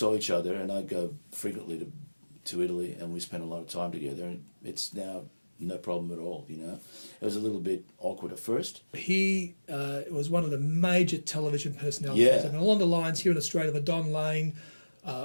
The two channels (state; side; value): inverted; both; correlation -1.00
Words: each other, and I'd go frequently to Italy, and we spent a lot of time together, and it's now no problem at all, you know. It was a little bit awkward at first. He was one of the major television personalities. Yeah. I mean, along the lines here in Australia of a Don Lane